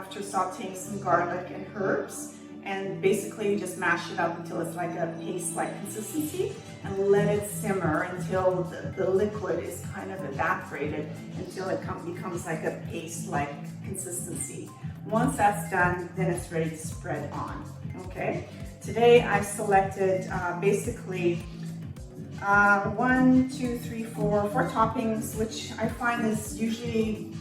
sauteing some garlic and herbs. And basically you just mash it up until it's like a paste-like consistency, and let it simmer until the liquid is kind of evaporated until it becomes like a paste-like consistency. Once that's done, then it's ready to spread on, okay? Today I've selected basically 4 toppings, which I find is usually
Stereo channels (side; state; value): both; identical; correlation 1.00